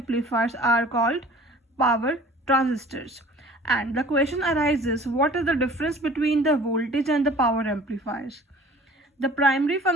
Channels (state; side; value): normal; both; correlation 0.47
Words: are called power transistors. And the question arises, what is the difference between the voltage and the power amplifiers? The primary